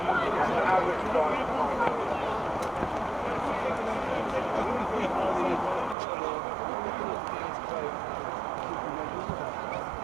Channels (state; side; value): drops out; left; at 6.0 s